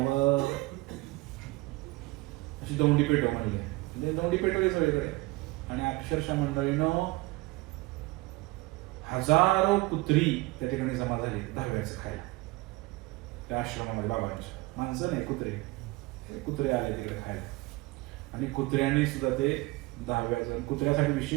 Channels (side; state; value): left; quieter; 21.9 dB